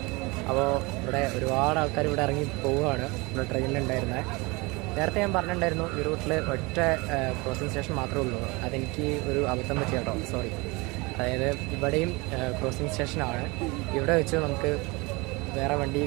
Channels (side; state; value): left; quieter; 25.5 dB